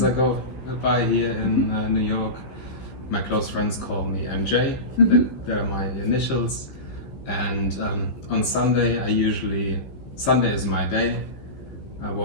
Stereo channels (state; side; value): late; right; 15 ms